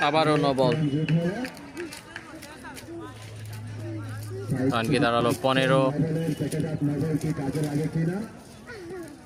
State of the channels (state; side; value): identical; both; correlation 1.00